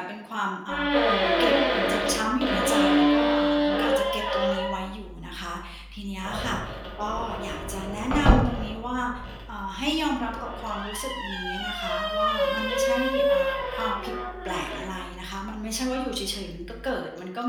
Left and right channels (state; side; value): identical; both; correlation 1.00